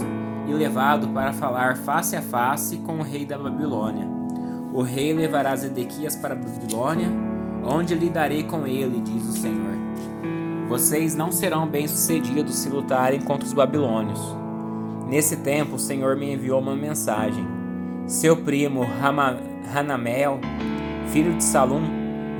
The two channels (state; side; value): identical; both; correlation 1.00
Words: e levado para falar face a face com o rei da Babilônia. O rei levará Zedequias para a Babilônia, onde lidarei com ele, diz o Senhor. Vocês não serão bem-sucedidos se lutarem contra os babilônios. Nesse tempo, o Senhor me enviou uma mensagem. Seu primo Hanamel, filho de Salum,